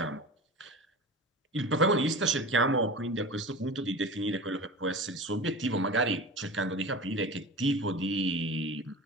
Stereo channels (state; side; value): normal; both; correlation 0.33